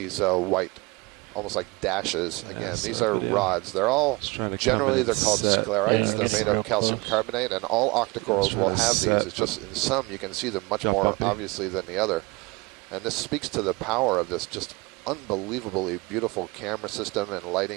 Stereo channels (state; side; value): quieter; left; 25.4 dB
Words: white, almost like dashes. Again, these are rods. They're all, generally they're called sclerites. They're made of calcium carbonate, and all octocorals will have these. It's just in some you can see them much more obviously than the other. And this speaks to the power of this just unbelievably beautiful camera system and